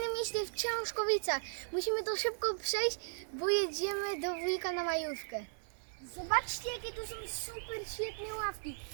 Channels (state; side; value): silent; left; 53 dB below the other